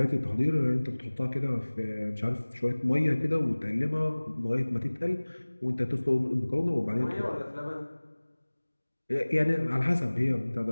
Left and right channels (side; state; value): both; inverted; correlation -1.00